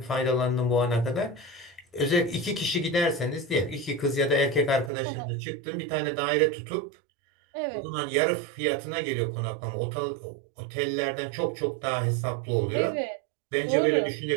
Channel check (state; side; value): drops out; left; at 4.9 s